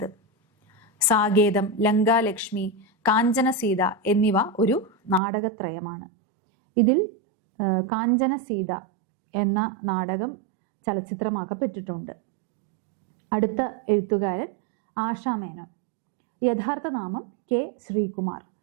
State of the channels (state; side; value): drops out; left; at 5.2 s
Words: സാകേതം, ലങ്കാലക്ഷ്മി, കാഞ്ചന സീത എന്നിവ ഒരു നാടകത്രയമാണ്. ഇതിൽ കാഞ്ചന സീത എന്ന നാടകം ചലച്ചിത്രമാക്കപ്പെട്ടിട്ടുണ്ട്. അടുത്ത എഴുത്തുകാരൻ ആശാ മേനോൻ. യഥാർത്ഥ നാമം K ശ്രീകുമാർ.